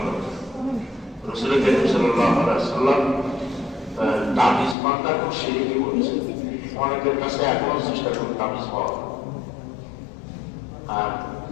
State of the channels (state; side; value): drops out; right; at 4.8 s